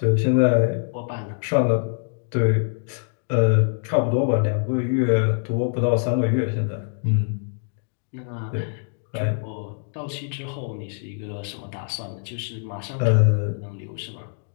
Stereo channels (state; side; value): silent; right; digital silence